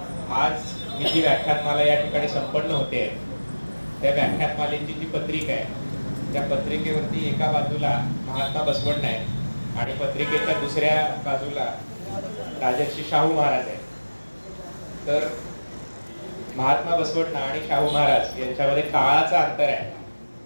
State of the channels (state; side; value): inverted; both; correlation -1.00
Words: आज ही जी व्याख्यानमाला या ठिकाणी संपन्न होते, त्या व्याख्यानमालेची जी पत्रिका आहे, त्या पत्रिकेवरती एका बाजूला महात्मा बसवण्ण आहे आणि पत्रिकेच्या दुसऱ्या बाजूला राजर्षी शाहू महाराज आहे. तर महात्मा बसवण्ण आणि शाहू महाराज यांच्यामध्ये काळाचा अंतर आहे,